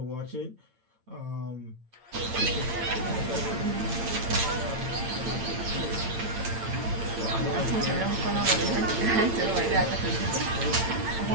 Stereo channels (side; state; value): left; late; 8.9 ms